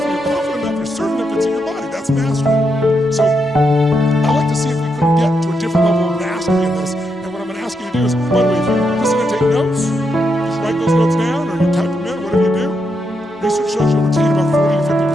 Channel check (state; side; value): normal; both; correlation 0.82